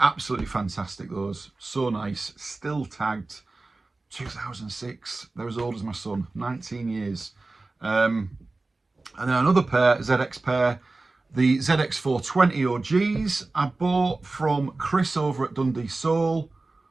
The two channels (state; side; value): quieter; left; 3.3 dB